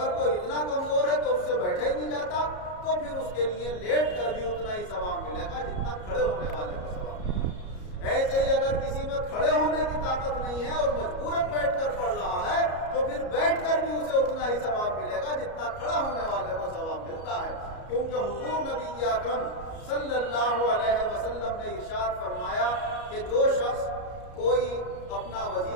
کوئی اتنا کمزور ہے کہ اس سے بیٹھا ہی نہیں جاتا تو پھر اس کے لیے لیٹ کر بھی اتنا ہی ثواب ملے گا جتنا کھڑے ہونے والے کو ثواب ملے گا. ایسے ہی اگر کسی میں کھڑے ہونے کی طاقت نہیں ہے اور مجبوراً بیٹھ کر پڑھ رہا ہے تو پھر بیٹھ کر بھی اسے اتنا ہی ثواب ملے گا جتنا کھڑا ہونے والے کو ثواب ملتا ہے. کیونکہ حضور نبی اکرم صلی اللہ علیہ وسلم نے ارشاد فرمایا کہ جو شخص کوئی اپنا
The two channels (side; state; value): right; late; 33 ms